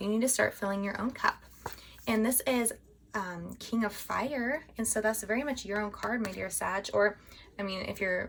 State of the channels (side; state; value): both; identical; correlation 1.00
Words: You need to start filling your own cup. And this is King of Fire, and so that's very much your own card, my dear Sag, or